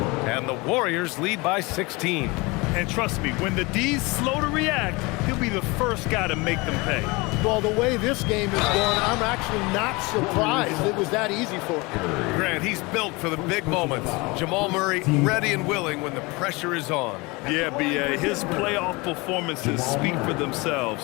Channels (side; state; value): right; quieter; 25.1 dB